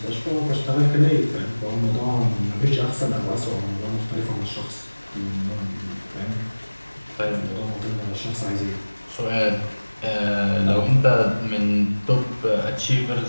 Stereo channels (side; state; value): both; inverted; correlation -1.00